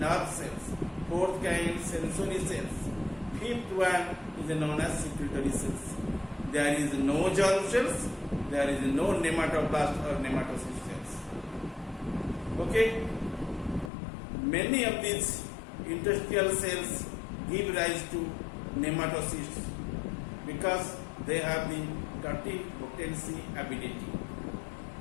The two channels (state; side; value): drops out; right; at 13.9 s